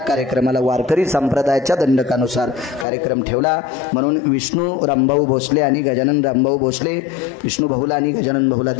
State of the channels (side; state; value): right; drops out; at 2.9 s